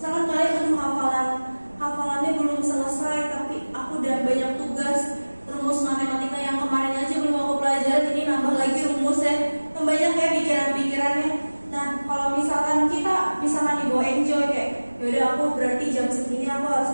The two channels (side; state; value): both; inverted; correlation -1.00